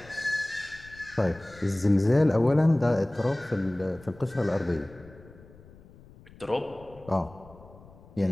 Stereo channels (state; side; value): noise; left; rumble, 22 dB below the sound